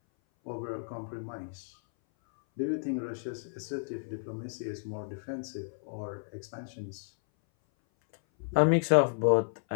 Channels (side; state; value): right; silent; 56 dB below the other